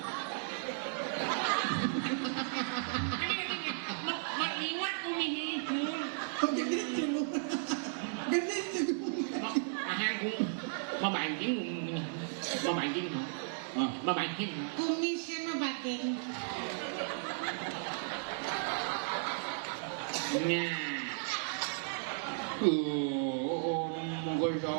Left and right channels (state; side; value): silent; left; digital silence